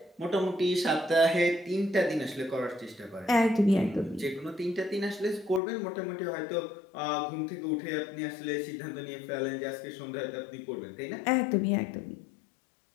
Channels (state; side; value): drops out; right; at 5.6 s